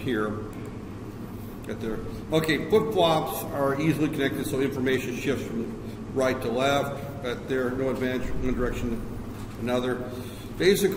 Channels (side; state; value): both; identical; correlation 1.00